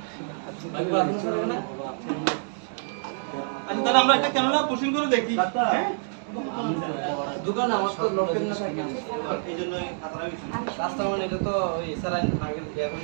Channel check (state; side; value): silent; left; digital silence